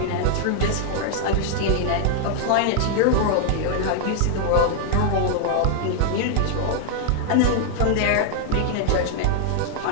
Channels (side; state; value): both; different; correlation 0.00